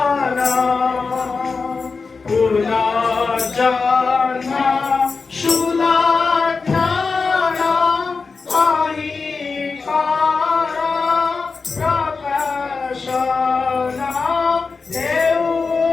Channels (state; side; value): quieter; right; 4.5 dB